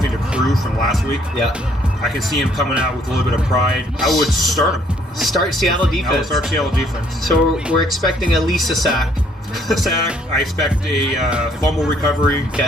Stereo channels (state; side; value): normal; both; correlation 0.65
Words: to prove from last week, Yeah. I can see him coming out with a little bit of pride. I would start him. Start Seattle I would defense. start Seattle defense. So we're expecting at least a sack. Sack. I expect a fumble recovery.